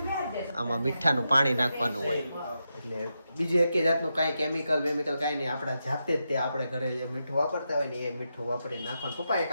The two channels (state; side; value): inverted; both; correlation -0.86